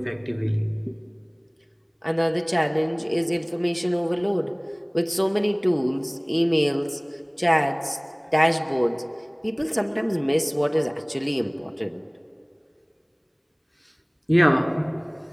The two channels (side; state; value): both; identical; correlation 1.00